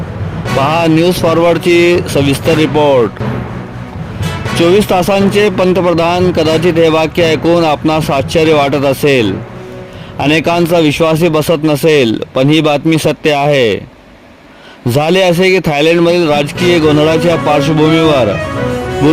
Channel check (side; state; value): both; identical; correlation 1.00